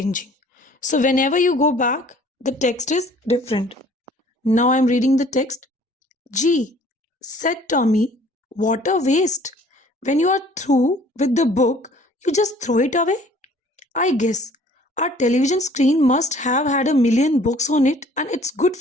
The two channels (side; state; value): both; normal; correlation 0.54